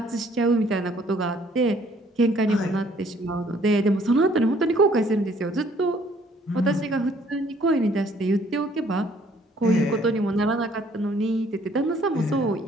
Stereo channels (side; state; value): both; normal; correlation 0.61